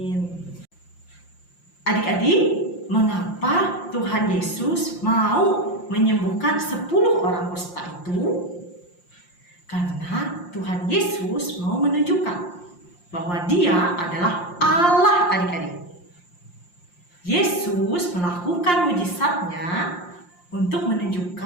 Adik-adik, mengapa Tuhan Yesus mau menyembuhkan 10 orang kusta itu? Karena Tuhan Yesus mau menunjukkan bahwa Dia adalah Allah adik-adik. Yesus melakukan mujizatnya untuk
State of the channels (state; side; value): late; right; 5.7 ms